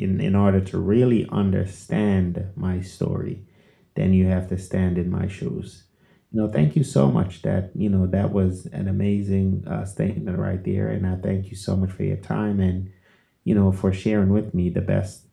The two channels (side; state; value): both; identical; correlation 1.00